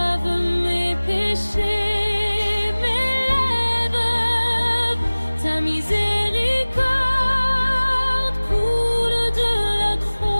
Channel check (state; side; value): inverted; both; correlation -1.00